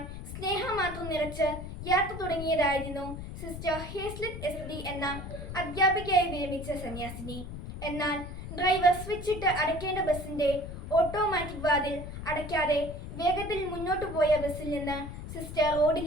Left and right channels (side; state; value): left; noise; rumble, 9 dB below the sound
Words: സ്നേഹം മാത്രം നിറച്ച് യാത്ര തുടങ്ങിയതായിരുന്നു സിസ്റ്റർ ഹേസ്ലെറ്റ് എസ്.ഡി. എന്ന അധ്യാപികയായി വിരമിച്ച സന്യാസിനി. എന്നാൽ ഡ്രൈവർ സ്വിച്ചിട്ട് അടയ്ക്കേണ്ട ബസിന്റെ ഓട്ടോമാറ്റിക് വാതിൽ അടയ്ക്കാതെ വേഗത്തിൽ മുന്നോട്ടു പോയ ബസ്സിൽ നിന്ന് സിസ്റ്റർ